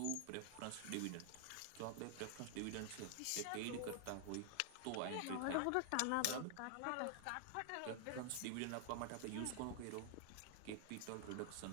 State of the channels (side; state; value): both; different; correlation 0.00